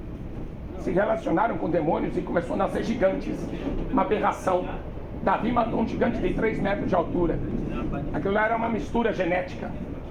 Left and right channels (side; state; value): both; identical; correlation 1.00